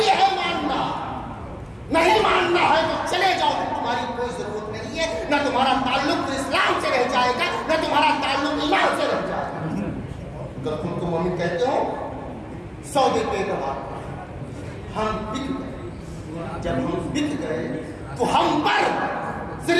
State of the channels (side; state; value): both; identical; correlation 1.00